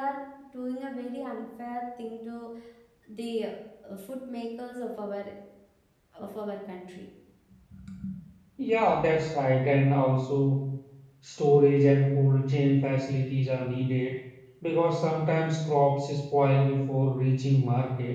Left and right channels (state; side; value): identical; both; correlation 1.00